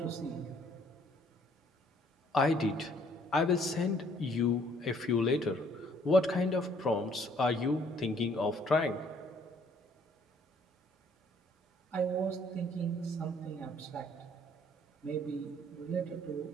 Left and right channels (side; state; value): both; normal; correlation 0.62